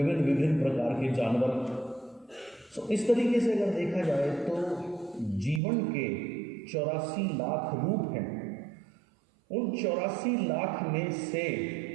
प्रकार के जानवर। तो इस तरीके से अगर देखा जाए तो जीवन के 84 लाख रूप हैं। उन 84 लाख में से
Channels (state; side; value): drops out; left; at 5.6 s